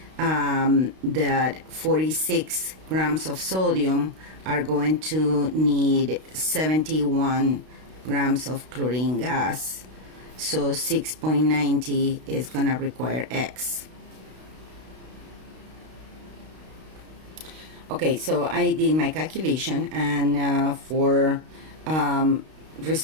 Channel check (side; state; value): left; late; 32 ms